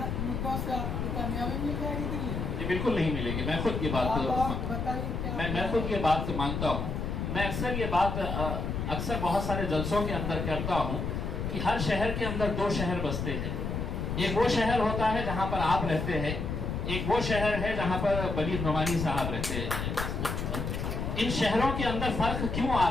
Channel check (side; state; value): left; noise; rumble, 3 dB below the sound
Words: से आपको कामयाबी मिल जाएगी दिल्ली में? ये बिल्कुल नहीं मिलेगी। मैं खुद ये बात बताइए। मैं खुद ये बात मानता हूँ। मैं अक्सर ये बात अक्सर बहुत सारे जलसों के अंदर करता हूँ कि हर शहर के अंदर 2 शहर बसते हैं। एक वो शहर होता है जहाँ पर आप रहते हैं, एक वो शहर है जहाँ पर बलीग नोमानी साहब रहते हैं। इन शहरों के अंदर फर्क क्यों आ